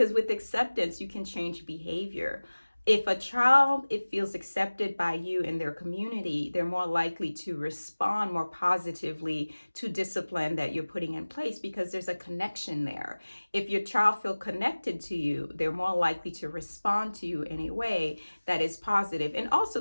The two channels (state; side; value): inverted; both; correlation -1.00